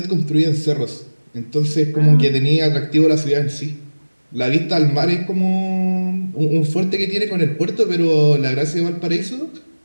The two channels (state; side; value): inverted; both; correlation -1.00